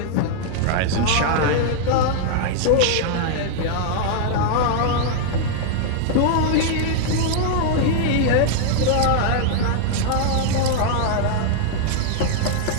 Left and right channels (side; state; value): both; different; correlation -0.01